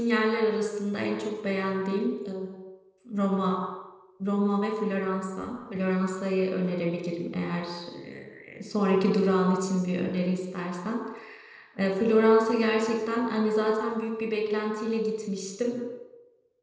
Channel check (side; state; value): both; identical; correlation 1.00